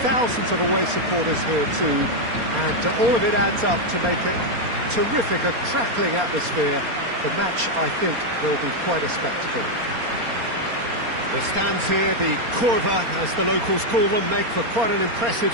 thousands of away supporters here too, and all of it adds up to make a terrific, a crackling atmosphere. The match, I think, will be quite a spectacle. The stands here, the curva, as the locals call them, make for quite an impressive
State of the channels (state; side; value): late; left; 4.3 ms